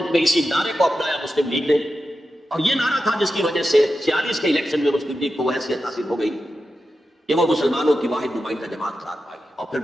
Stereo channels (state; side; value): normal; both; correlation 0.90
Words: میں اسی نعرے کو اپنایا مسلم لیگ نے، اور یہ نعرہ تھا جس کی وجہ سے 46 کے الیکشن میں مسلم لیگ کو وہ حیثیت حاصل ہو گئی کہ وہ مسلمانوں کی واحد نمائندہ جماعت قرار پائی، اور پھر